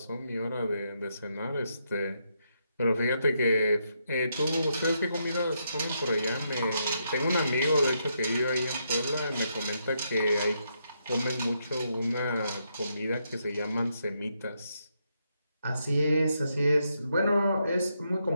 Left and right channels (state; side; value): inverted; both; correlation -0.79